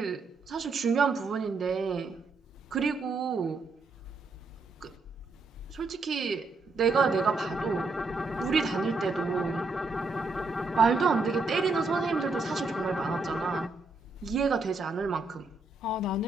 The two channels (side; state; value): left; quieter; 3.6 dB